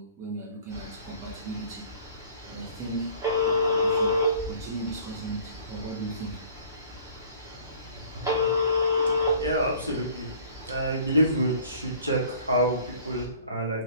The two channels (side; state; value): both; inverted; correlation -0.51